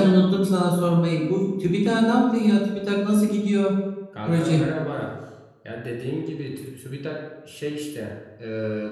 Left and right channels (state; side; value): identical; both; correlation 1.00